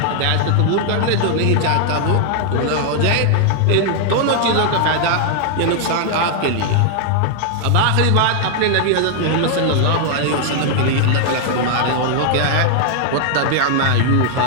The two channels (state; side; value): different; both; correlation 0.00